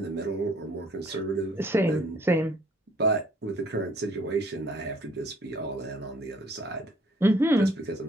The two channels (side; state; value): both; normal; correlation 0.60